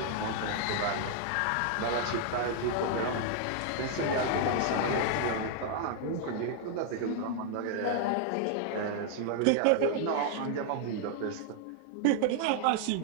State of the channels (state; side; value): different; both; correlation 0.00